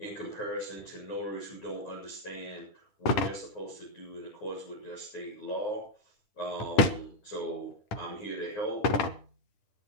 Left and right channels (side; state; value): right; late; 10 ms